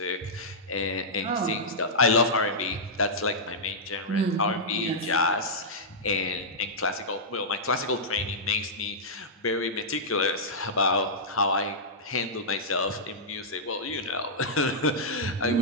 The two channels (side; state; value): both; normal; correlation -0.12